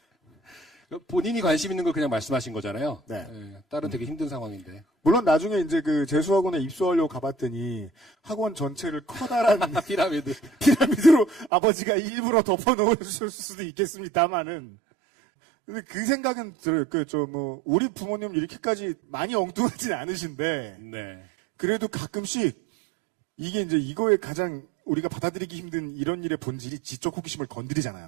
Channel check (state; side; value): drops out; left; at 11.5 s